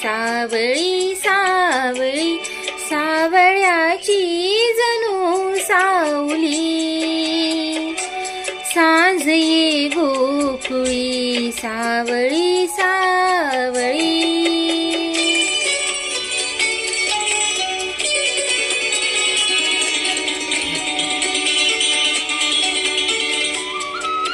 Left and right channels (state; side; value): identical; both; correlation 1.00